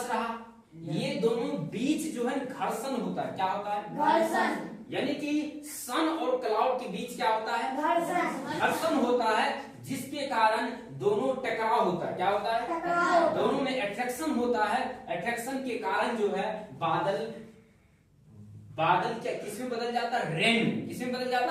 रहा। ये दोनों बीच जो है घर्षण होता है। क्या होता है? घर्षण। यानी कि सन और क्लाउड के बीच क्या होता है? घर्षण होता है, जिसके कारण दोनों टकराव होता है। क्या होता है? टकराव। दोनों में अट्रैक्शन होता है। अट्रैक्शन के कारण जो है बादल क्या किसमें बदल जाता है? रेन में। किसमें बदल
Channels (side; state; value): both; identical; correlation 1.00